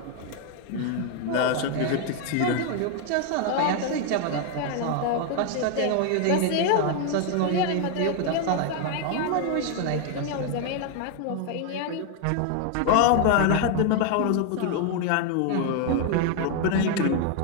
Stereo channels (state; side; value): different; both; correlation 0.00